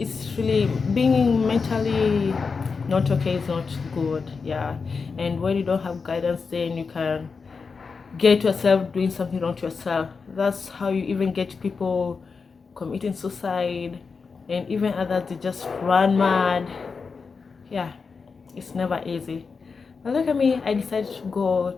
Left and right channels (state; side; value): quieter; right; 5.0 dB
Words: really being mentally not okay is not good. Yeah, and when you don't have guidance, then you can get yourself doing something wrong to yourself. That's how you even get people committing suicide, and even others, they just run mad. Yeah, it's never easy. But look at me, I decided to go